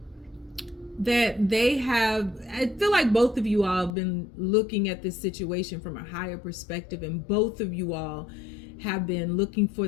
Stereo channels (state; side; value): drops out; right; at 3.9 s